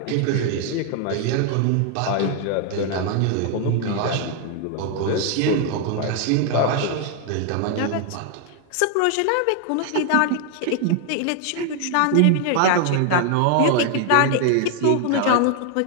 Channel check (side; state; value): both; different; correlation 0.00